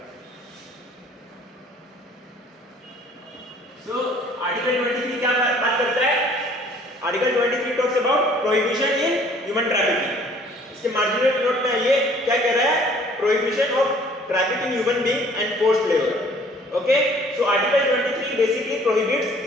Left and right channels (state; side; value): normal; both; correlation 0.55